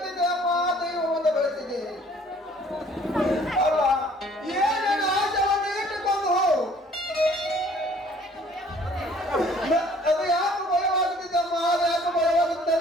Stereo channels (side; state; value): both; normal; correlation 0.56